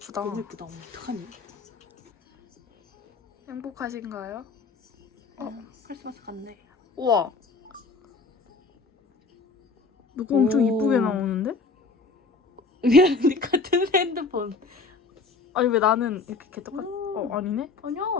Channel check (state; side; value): quieter; right; 4.2 dB